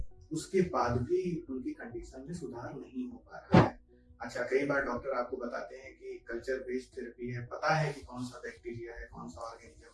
उसके बाद भी उनकी कंडीशन में सुधार नहीं हो पा रहा है। अच्छा, कई बार डॉक्टर आपको बताते हैं कि कल्चर बेस्ड थेरेपी है, पता है कि कौन सा बैक्टीरिया है, कौन सा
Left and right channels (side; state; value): both; identical; correlation 1.00